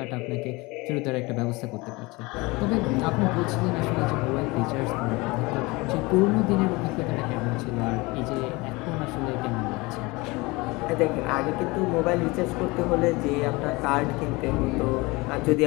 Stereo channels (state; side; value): quieter; right; 23.8 dB